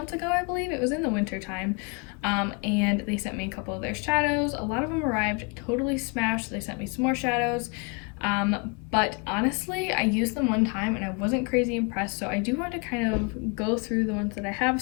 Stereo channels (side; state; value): right; quieter; 33.4 dB